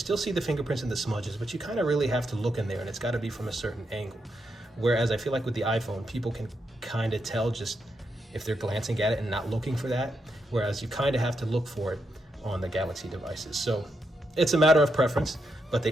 see the fingerprints and the smudges, but you kind of really have to look in there, and it's got to be from a certain angle. Whereas I feel like with the iPhone, people can kind of tell just if they're glancing at it and not looking for that, whereas you kind of have to look for it on the Galaxy devices. So it's a matter of preference, but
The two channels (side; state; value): both; normal; correlation 0.82